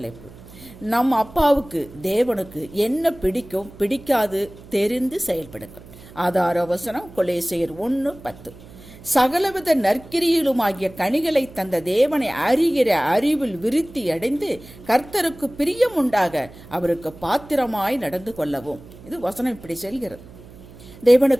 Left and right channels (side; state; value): right; noise; hum, 20 dB below the sound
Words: நம் அப்பாவுக்கு தேவனுக்கு என்ன பிடிக்கும் பிடிக்காது தெரிந்து செயல்படுங்கள். ஆதார வசனம் கொலேசியர் 1:10. சகலவித நற்கிரியிலுமாகிய கனிகளை தந்த தேவனை அறிகிற அறிவில் விருத்தி அடைந்து கர்த்தருக்கு பிரியம் உண்டாக அவருக்கு பாத்திரமாய் நடந்து கொள்ளவும். இது வசனம் இப்படி செல்கிறது.